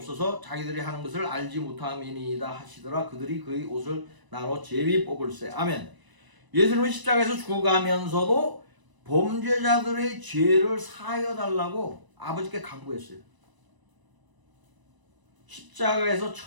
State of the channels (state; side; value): late; left; 1.0 ms